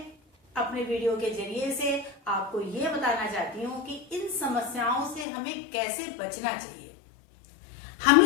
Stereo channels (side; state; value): right; drops out; at 5.2 s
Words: अपने वीडियो के जरिए से आपको ये बताना चाहती हूँ कि इन समस्याओं से हमें कैसे बचना चाहिए।